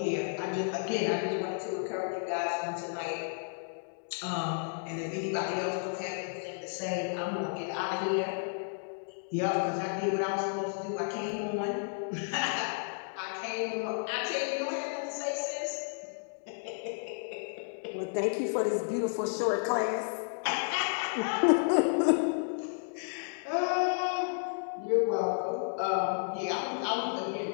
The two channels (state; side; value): silent; right; digital silence